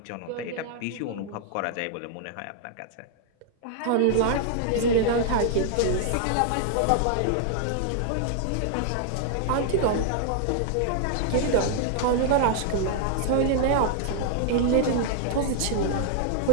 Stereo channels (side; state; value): both; different; correlation 0.00